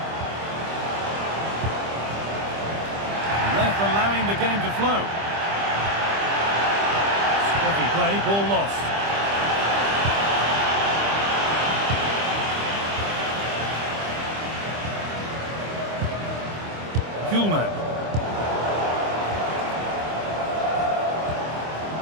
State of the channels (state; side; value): late; left; 25 ms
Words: The ref allowing the game to flow. Spotty play, ball lost. Kuhlman.